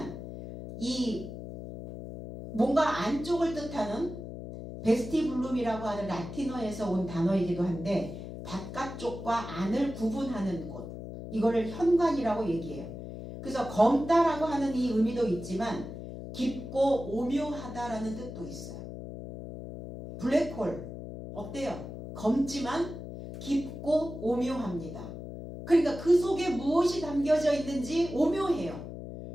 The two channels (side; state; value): left; noise; hum, 10 dB below the sound